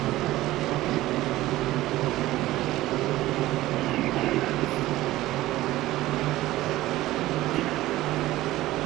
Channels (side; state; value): left; quieter; 16.5 dB